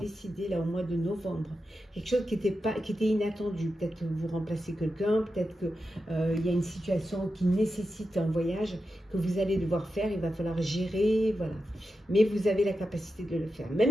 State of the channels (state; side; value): normal; both; correlation 0.90